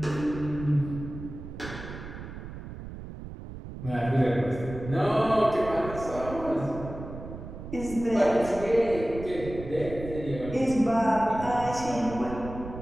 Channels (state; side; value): noise; right; rumble, 11 dB below the sound